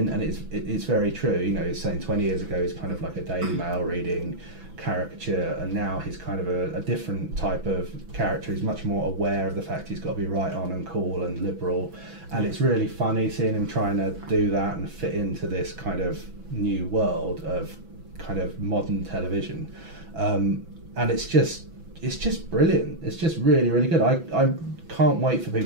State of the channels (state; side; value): late; left; 6.0 ms